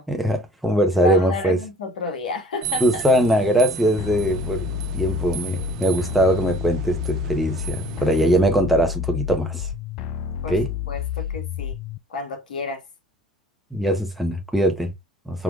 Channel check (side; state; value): both; normal; correlation 0.50